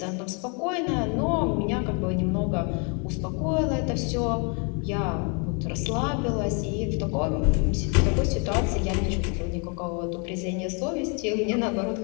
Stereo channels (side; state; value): right; quieter; 36.2 dB